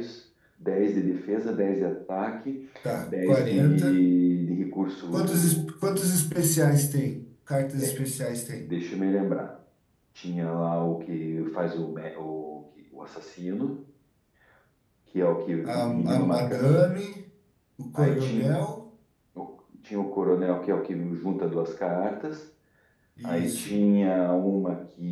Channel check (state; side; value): identical; both; correlation 1.00